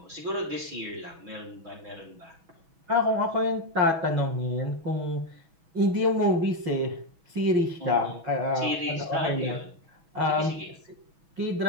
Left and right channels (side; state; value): left; late; 6.1 ms